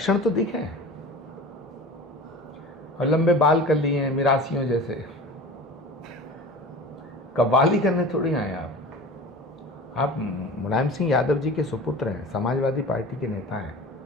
तो दिखे हैं, और लंबे बाल कर लिए हैं मिरासियों जैसे। कव्वाली करने थोड़ी आए आप मुलायम सिंह यादव जी के सुपुत्र हैं, समाजवादी पार्टी के नेता हैं।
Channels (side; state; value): both; normal; correlation 0.36